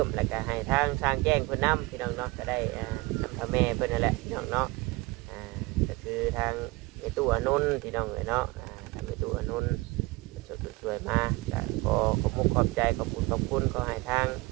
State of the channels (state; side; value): quieter; left; 22.8 dB